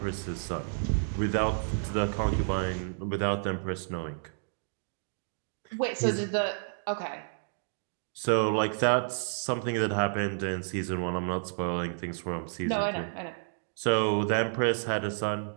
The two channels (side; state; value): left; silent; digital silence